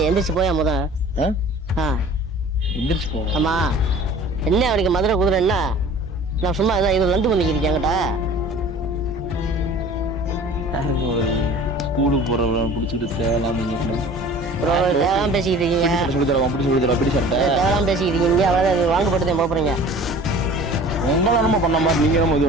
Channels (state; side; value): normal; both; correlation 0.44